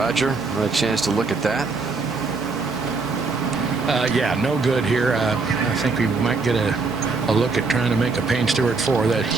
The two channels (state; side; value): quieter; left; 4.1 dB